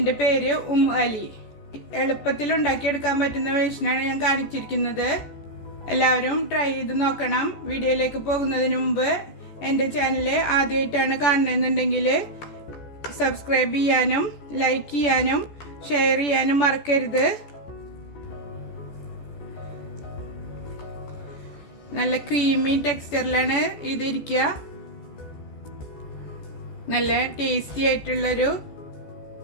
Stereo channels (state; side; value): late; right; 14 ms